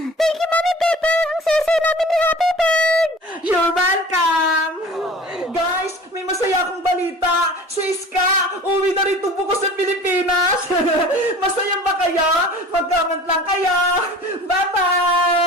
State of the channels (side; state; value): both; normal; correlation 0.43